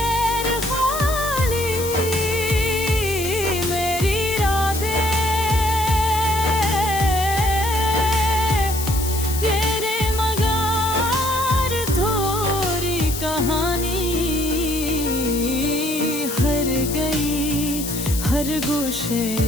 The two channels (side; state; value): left; noise; hiss, 7 dB below the sound